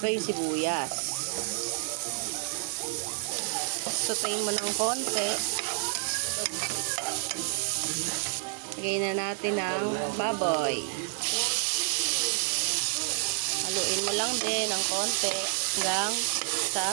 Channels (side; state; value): left; silent; digital silence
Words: yung sibuyas. Sutayin mo ng konti. Lagay na natin ang baboy. Haluin mo lang din ng konti hanggang